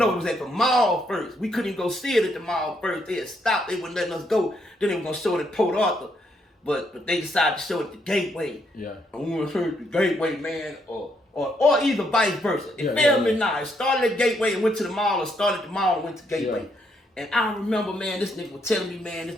it was at the mall first. We couldn't even go see it at the mall first. They had stopped. They wouldn't letting us go. Then they were going to show it at Port Arthur. But they decided to show it at the Gateway. Yeah. And we went to the Gateway, man, or either vice versa. It failed me now. It started at Gateway and went to the mall, or started at the mall and went to Gateway. Yeah. And I remember, man, this nigga was telling me, man, this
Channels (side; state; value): both; normal; correlation 0.75